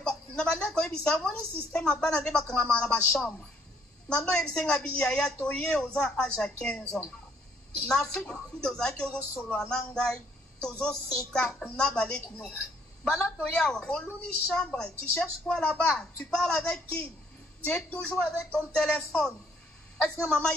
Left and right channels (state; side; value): normal; both; correlation 0.66